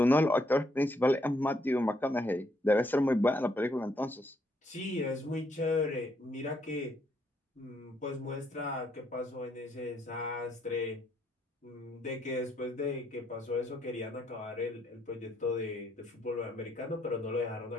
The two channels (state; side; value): normal; both; correlation 0.72